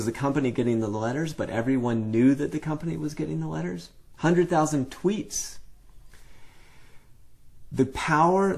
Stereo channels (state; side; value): identical; both; correlation 1.00